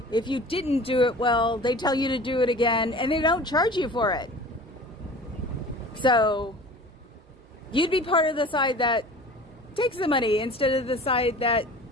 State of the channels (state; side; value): normal; both; correlation 0.42